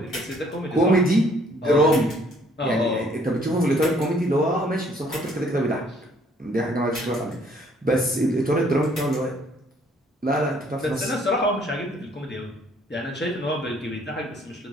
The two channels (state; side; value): normal; both; correlation 0.63